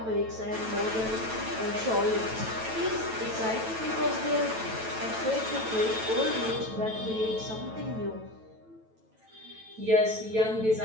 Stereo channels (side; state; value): left; late; 9.1 ms